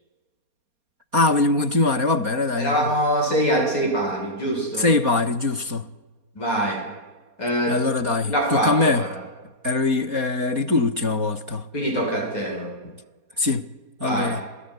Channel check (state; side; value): late; left; 4.2 ms